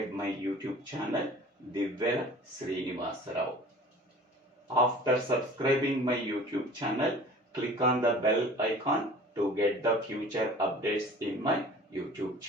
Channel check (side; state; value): both; normal; correlation 0.44